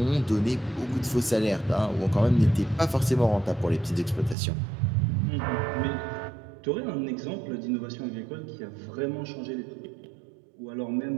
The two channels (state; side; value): drops out; left; at 4.4 s